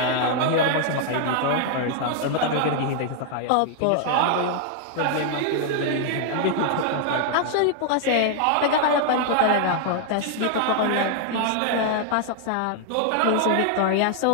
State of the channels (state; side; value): different; both; correlation 0.00